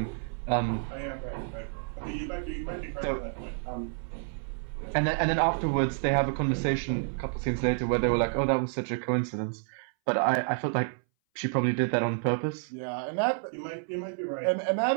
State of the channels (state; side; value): silent; left; 58 dB below the other